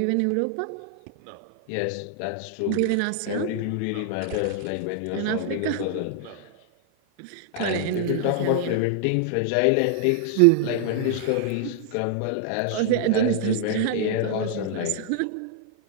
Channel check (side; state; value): both; different; correlation 0.00